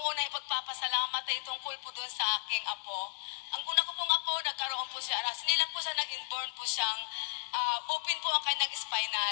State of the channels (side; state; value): right; silent; digital silence